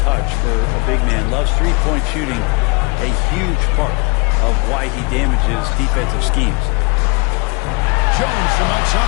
for a big man. Loves three-point shooting, a huge part of why he damages defensive schemes. Jones from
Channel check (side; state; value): right; quieter; 30.0 dB